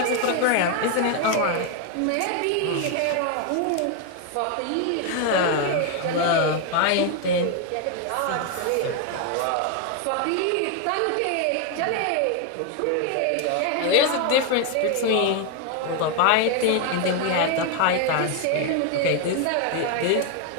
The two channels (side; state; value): both; different; correlation 0.01